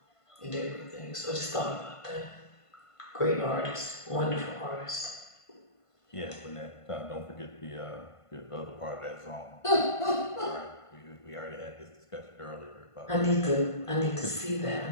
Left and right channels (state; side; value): late; right; 1.5 ms